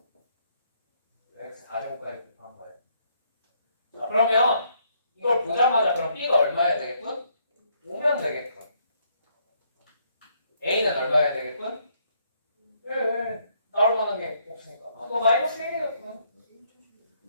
x 4제곱까지 곱한 거예요. 자, 그러면 이걸 보자마자 그럼 b가 얼마여야 되겠군? 5면 되겠군. a는 얼마여야 되겠군? 1. 나올 만한 게 없으니까. 아, 너 마이너스 1이었군.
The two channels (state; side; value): inverted; both; correlation -0.70